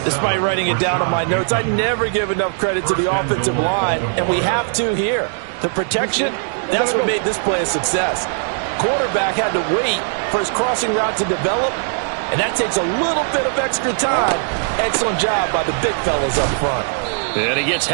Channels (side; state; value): left; silent; digital silence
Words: Despite writing it down on my notes, I never give enough credit to the offensive line, and we have to here. The protection, that's what made this play a success. Quarterback had to wait for his crossing route to develop, and that takes a little bit of extra time. Excellent job by the big fellas up front. And he gets